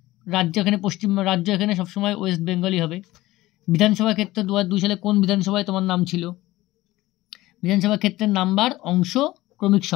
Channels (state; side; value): quieter; right; 17.6 dB